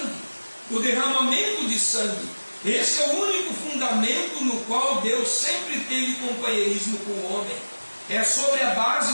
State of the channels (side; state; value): both; inverted; correlation -1.00